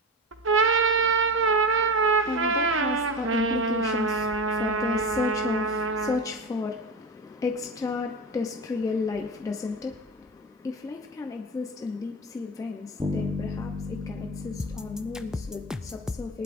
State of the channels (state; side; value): normal; both; correlation 0.24